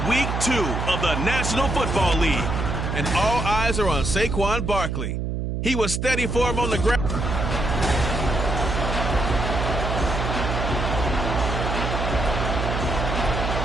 week 2 of the National Football League, and all eyes are on Saquon Barkley. He was steady for him on the ground.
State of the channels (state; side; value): noise; right; hum, 2 dB below the sound